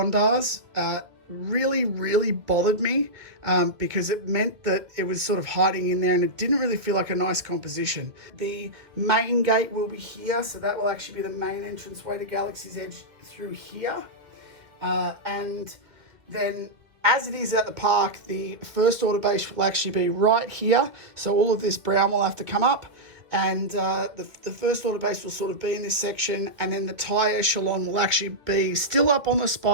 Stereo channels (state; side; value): late; left; 2.1 ms